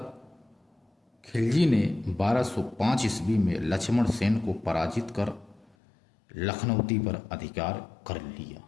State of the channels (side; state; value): right; drops out; at 5.8 s